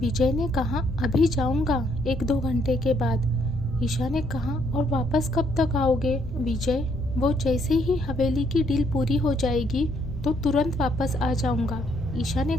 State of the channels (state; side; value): normal; both; correlation 0.70